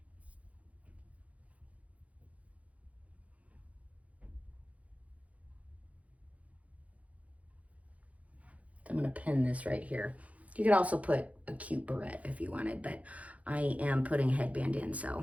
I'm gonna pin this right here. You could also put a cute barrette if you wanted, but I am putting a headband in,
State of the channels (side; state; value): left; late; 0.067 ms